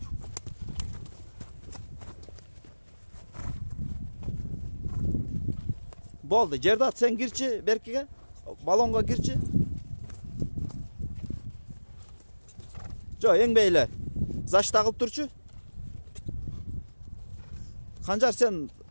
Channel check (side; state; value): both; inverted; correlation -1.00